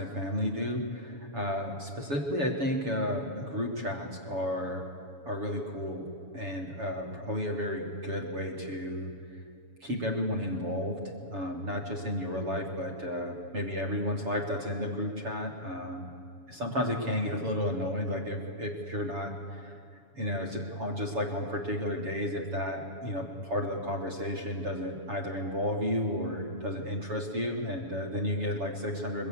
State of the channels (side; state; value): left; late; 7.1 ms